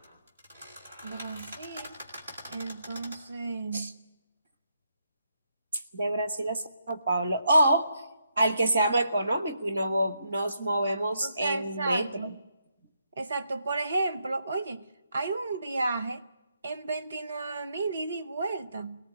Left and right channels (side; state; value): both; inverted; correlation -0.78